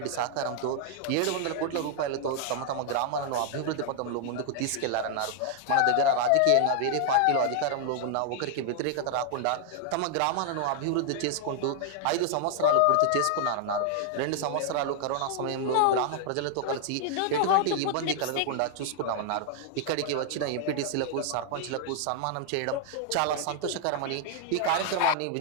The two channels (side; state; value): both; different; correlation 0.00